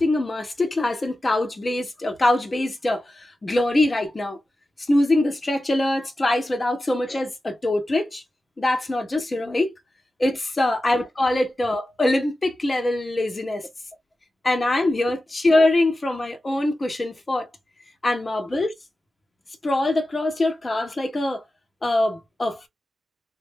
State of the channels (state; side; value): normal; both; correlation 0.93